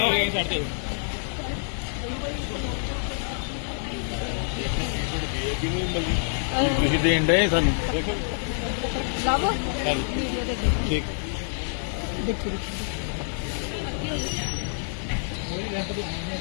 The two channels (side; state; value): right; silent; 55 dB below the other